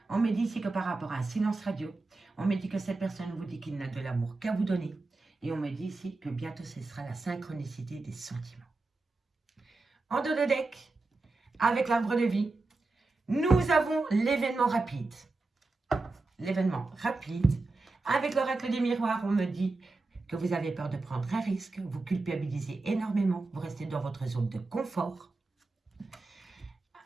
On me dit ici que par rapport à un silence radio, on me dit que cette personne vous dit qu'il n'a de l'amour qu'à vous donner. Et on me dit ici que bientôt ce sera la synchronicité des sentiments. En dos de deck, avec l'arbre de vie, nous avons l'événement rapide. L'événement rapide. Avec l'oracle des miroirs, on me dit que vous avez peur de prendre un risque, vous culpabilisez énormément, vous restez dans votre zone de confort.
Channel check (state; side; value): quieter; left; 3.4 dB